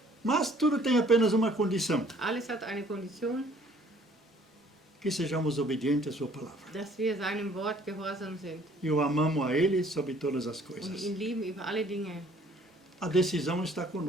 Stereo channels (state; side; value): normal; both; correlation 0.58